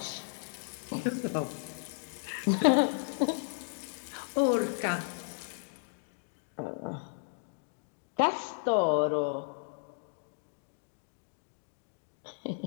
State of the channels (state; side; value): silent; right; digital silence